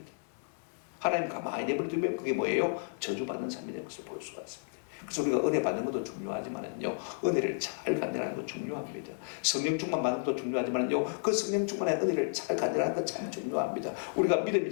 하나님 가만히 내버려 두면 그게 뭐예요? 저주받는 삶이 되는 것을 볼 수가 있습니다. 그래서 우리가 은혜 받는 것도 중요하지만요 은혜를 잘 간절하는 것도 중요합니다. 성령 충만 받는 것도 중요하지만요 그 성령 충만의 은혜를 잘 간절하는 것 참 중요합니다. 우리가 믿음이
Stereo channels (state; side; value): silent; right; digital silence